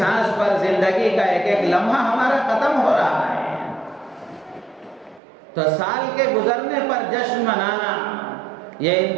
پر زندگی کا ایک ایک لمحہ ہمارا ختم ہو رہا ہے۔ تو سال کے گزرنے پر جشن منانا یہ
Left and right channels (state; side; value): drops out; left; at 5.2 s